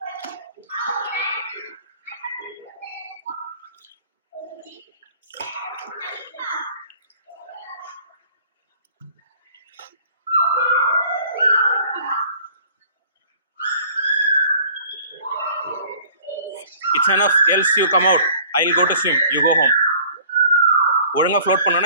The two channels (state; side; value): inverted; both; correlation -0.51